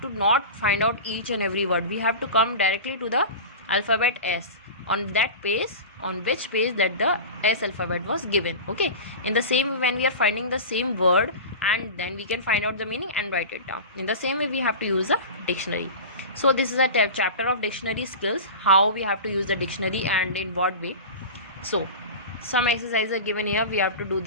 to not find out each and every word. We have to come directly to the alphabet S on that page, on which page that the S alphabet was given. Okay, in the same way, when we are finding the same word, and then we can find out the meaning and write it down. In the same way, we have to use a dictionary. So this is a chapter of dictionary skills, how we have to use the dictionary and in what way. So some exercises are given here. We have to do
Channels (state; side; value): inverted; both; correlation -0.30